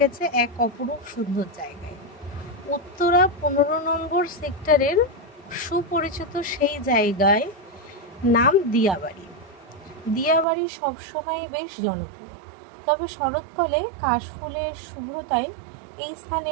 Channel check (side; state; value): left; drops out; at 10.5 s